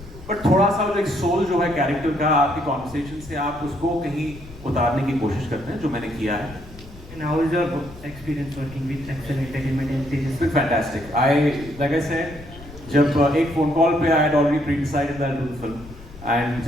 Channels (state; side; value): noise; left; rumble, 18 dB below the sound